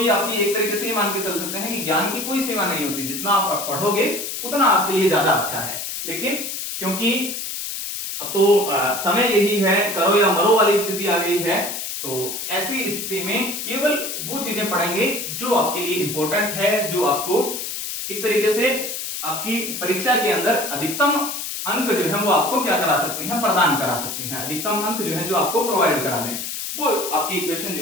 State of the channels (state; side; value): noise; left; hiss, 5 dB below the sound